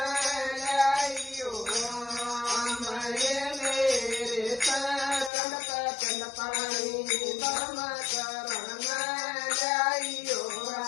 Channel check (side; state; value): right; drops out; at 5.3 s